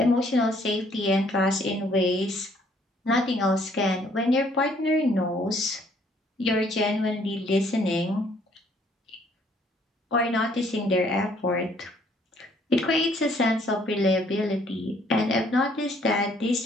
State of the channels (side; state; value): both; normal; correlation 0.63